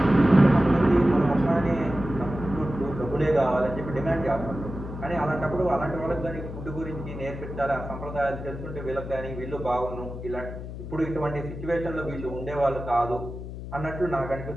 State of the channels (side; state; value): left; noise; hum, 9 dB below the sound